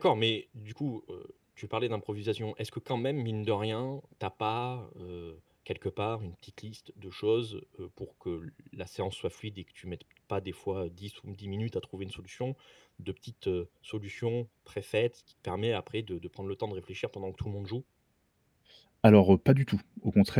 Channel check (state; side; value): identical; both; correlation 1.00